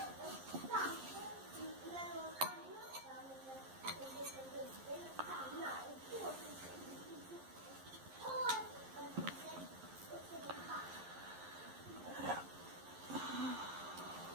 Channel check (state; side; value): late; left; 11 ms